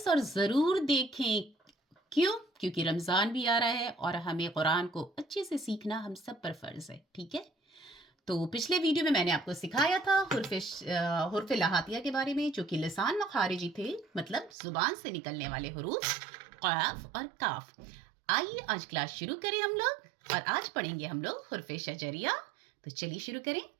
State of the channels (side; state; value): left; drops out; at 14.5 s